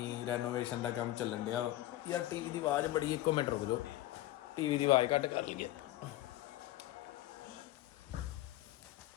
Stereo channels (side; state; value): right; quieter; 15.6 dB